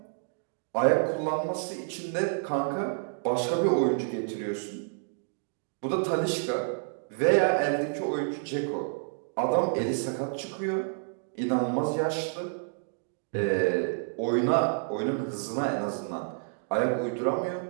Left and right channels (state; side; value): silent; left; digital silence